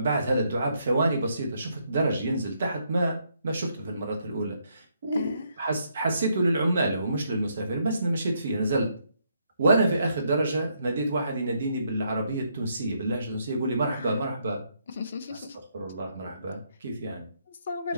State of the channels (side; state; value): both; inverted; correlation -0.75